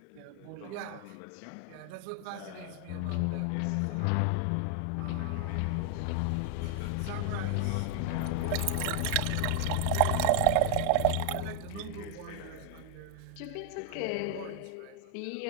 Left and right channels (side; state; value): both; different; correlation 0.00